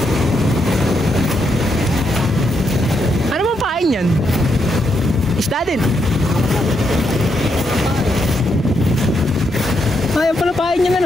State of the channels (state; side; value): normal; both; correlation 0.80